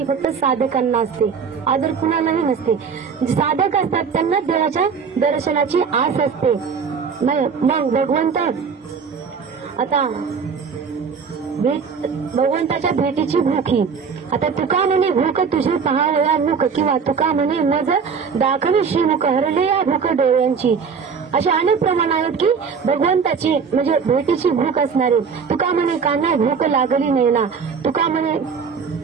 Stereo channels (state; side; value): quieter; left; 6.0 dB